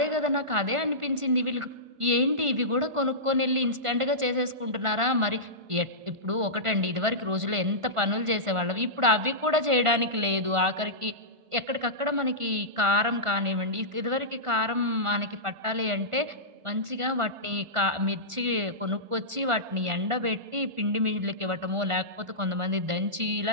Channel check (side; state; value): left; late; 1.4 ms